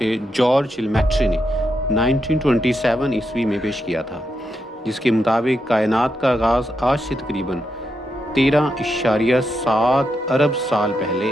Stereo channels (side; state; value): both; normal; correlation 0.84